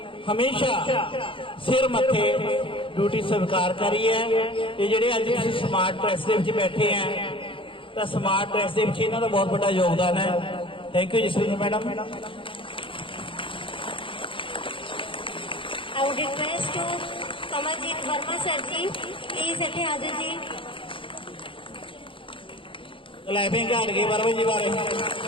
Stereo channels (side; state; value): right; late; 0.25 ms